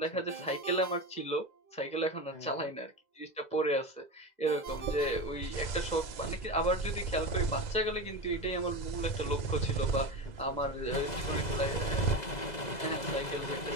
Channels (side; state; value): right; late; 2.0 ms